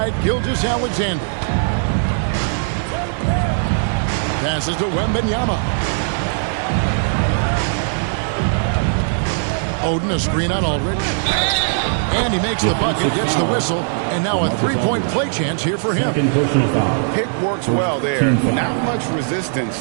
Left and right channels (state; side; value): silent; left; digital silence